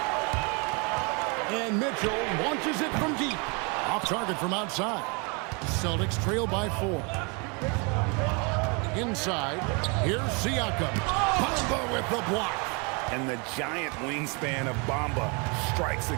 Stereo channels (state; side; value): quieter; left; 32.2 dB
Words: And Mitchell launches it from deep. Off target from outside. Celtics trail by 4. Inside, here's Siakam. Bamba with the block. And the giant wingspan of Bamba strikes